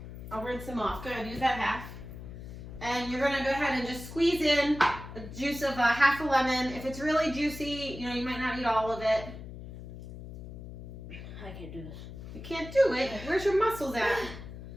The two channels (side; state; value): left; noise; hum, 12 dB below the sound